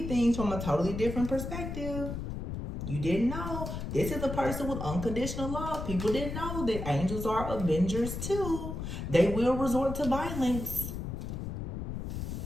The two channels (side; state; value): left; noise; rumble, 5 dB below the sound